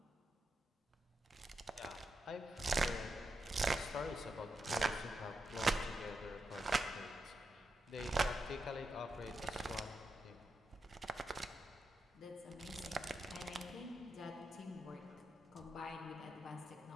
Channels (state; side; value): normal; both; correlation 0.86